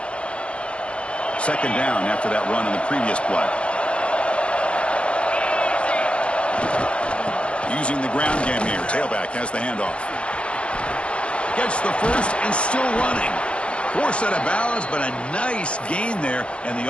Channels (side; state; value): right; late; 0.059 ms